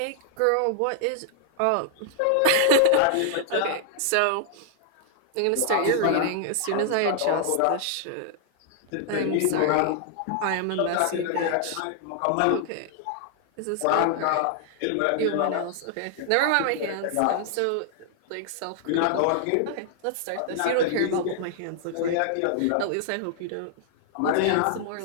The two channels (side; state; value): both; different; correlation -0.01